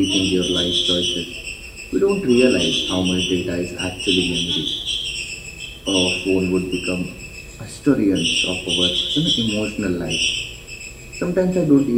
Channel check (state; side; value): identical; both; correlation 1.00